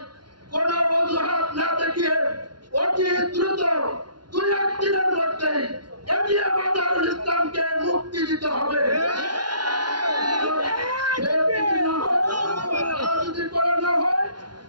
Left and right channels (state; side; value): late; left; 0.71 ms